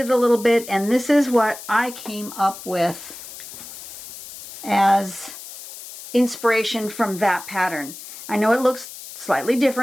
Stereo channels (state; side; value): noise; left; hiss, 14 dB below the sound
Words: a little bit, and this is what I came up with as inspiration from that pattern. I know it looks slightly